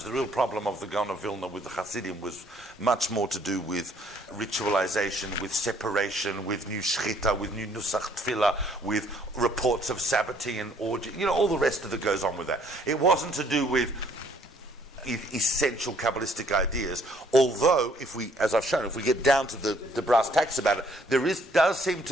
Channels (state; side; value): normal; both; correlation 0.63